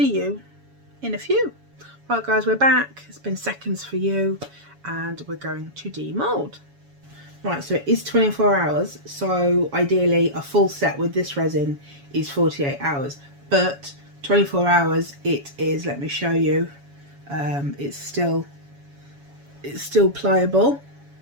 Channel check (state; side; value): late; left; 7.1 ms